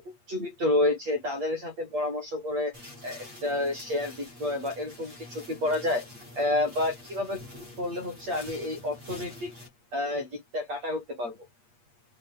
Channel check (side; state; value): left; late; 8.5 ms